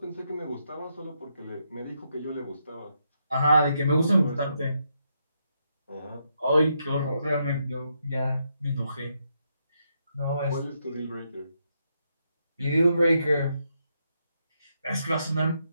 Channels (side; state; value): both; inverted; correlation -0.80